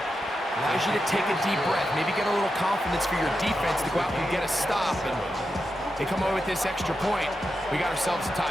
Allows you to take a deep breath, maybe get a little confidence for your defense to go out and get a stop, and they come away with this extra point. We got ourselves a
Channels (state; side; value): normal; both; correlation 0.88